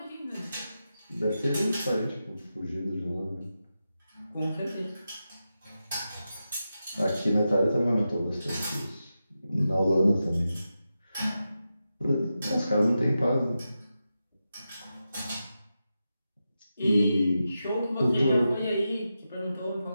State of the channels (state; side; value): inverted; both; correlation -0.90